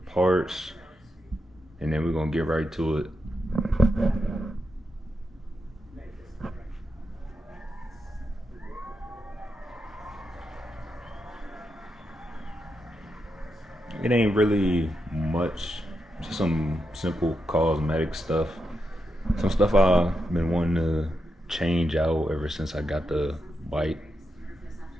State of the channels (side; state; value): both; normal; correlation 0.86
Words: and then we're gonna get right to it. It ain't really much, just some simple cosmetic stuff. Some stuff I've been wanting to change out ever since I got the bike.